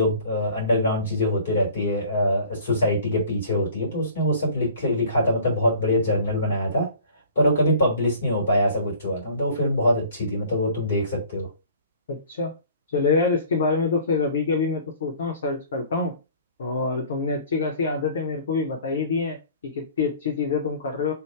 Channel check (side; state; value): both; inverted; correlation -0.49